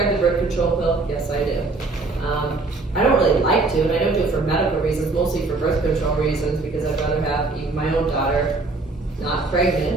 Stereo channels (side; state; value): left; quieter; 3.5 dB